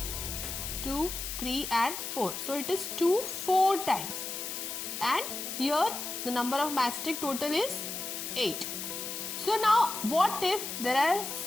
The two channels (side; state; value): left; noise; hiss, 5 dB below the sound